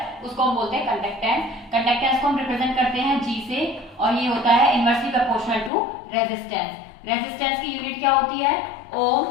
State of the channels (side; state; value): right; drops out; at 5.7 s